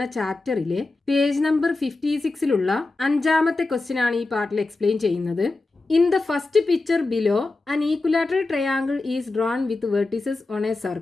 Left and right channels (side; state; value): right; quieter; 3.3 dB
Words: ചാപ്റ്ററിലെ page number 56ലുള്ള അഞ്ചാമത്തെ ക്വസ്റ്റ്യൻ ആണ് ഈ പാർട്ടിൽ എക്സ്പ്ലെയിൻ ചെയ്യുന്നത്. In the first picture below an equilateral triangle is drawn with vertices on a